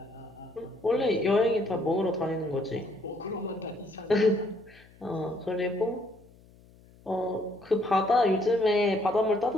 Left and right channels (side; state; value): left; noise; hum, 26 dB below the sound